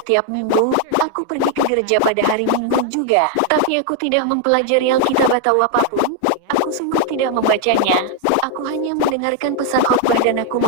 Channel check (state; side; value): different; both; correlation 0.00